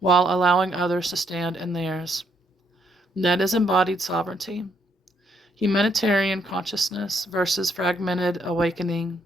allowing others to stand in theirs. That is embodied sovereignty. Humanitarian consciousness versus fragmented awakening.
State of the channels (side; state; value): both; normal; correlation 0.72